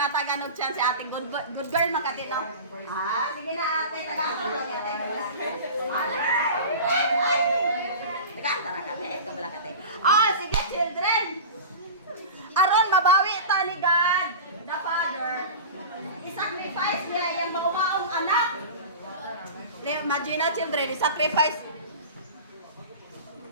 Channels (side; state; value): both; inverted; correlation -0.32